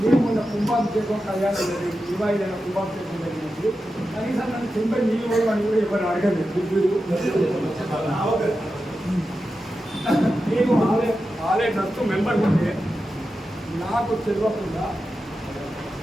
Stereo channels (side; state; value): both; normal; correlation 0.91